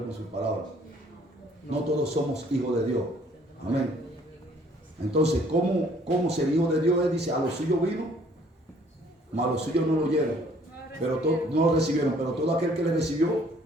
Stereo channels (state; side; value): normal; both; correlation 0.59